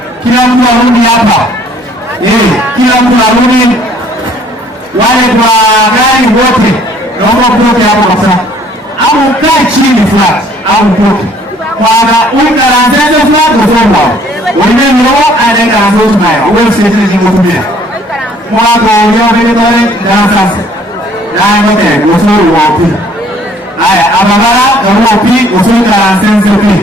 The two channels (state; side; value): normal; both; correlation 0.59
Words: Kila mtu arudi hapa. Kila mtu arudi. Wale kwa gari wote naomba mtoke hapo kabisa. Au ukae chini flat au mtoke. Kwa ukaranzeze flat usomwa. Wewe ndio anaanza nayo. Wewe sisi zingotumia. Mwako leo vile tole na sasa. Na ngote usuru wapi. Haya, abagara kama pi usuru karanzeze pi.